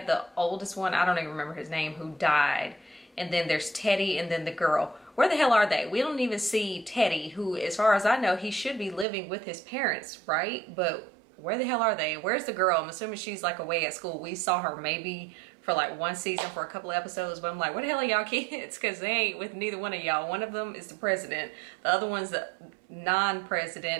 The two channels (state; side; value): drops out; left; at 9.1 s